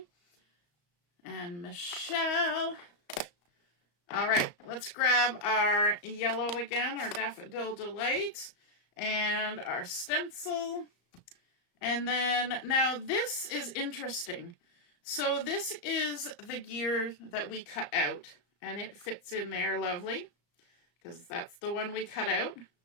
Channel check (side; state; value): right; late; 34 ms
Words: And Michelle. All right, let's grab our yellow again, our Daffodil Delight, and our stencil. And then, now this is interesting. So this is the gear that we cut out, and it fits in there lovely, because that's the one we cut out.